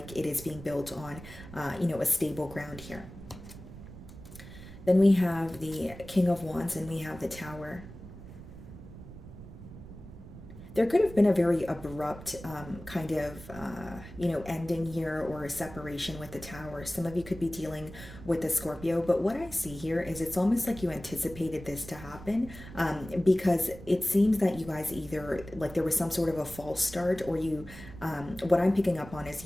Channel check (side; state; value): right; noise; rumble, 15 dB below the sound